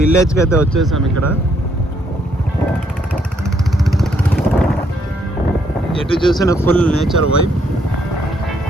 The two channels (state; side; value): normal; both; correlation 0.71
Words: అయితే వచ్చేసాం. ఇక్కడ ఎటు చూసిన ఫుల్ నేచర్ వైబ్.